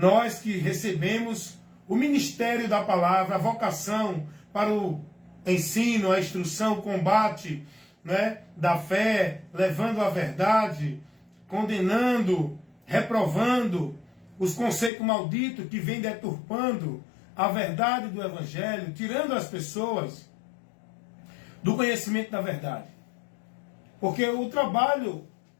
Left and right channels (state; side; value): drops out; right; at 14.9 s